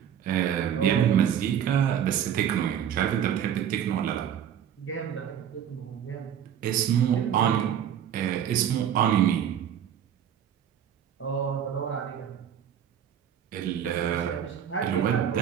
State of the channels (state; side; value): quieter; left; 9.4 dB